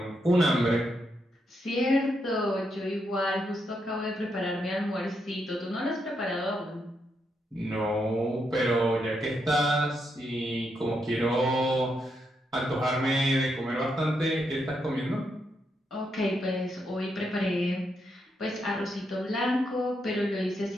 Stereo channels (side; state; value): both; normal; correlation 0.81